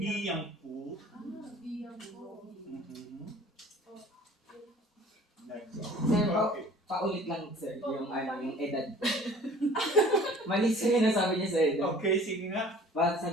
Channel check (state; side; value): normal; both; correlation 0.49